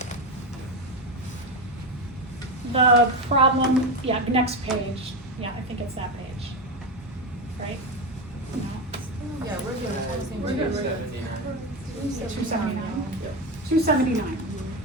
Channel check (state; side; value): normal; both; correlation 0.15